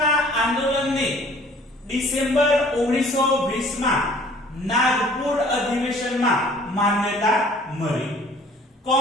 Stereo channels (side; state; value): both; normal; correlation 0.53